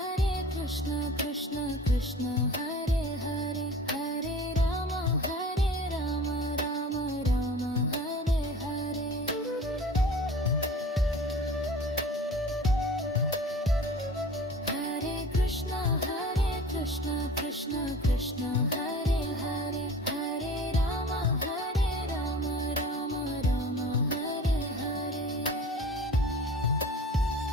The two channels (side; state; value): both; normal; correlation 0.40